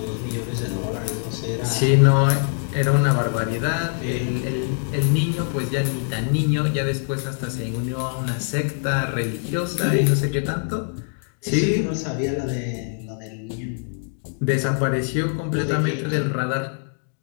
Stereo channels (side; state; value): right; silent; 63 dB below the other